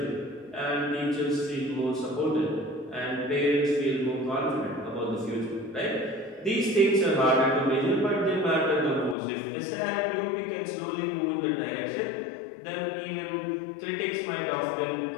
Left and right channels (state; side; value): drops out; right; at 9.2 s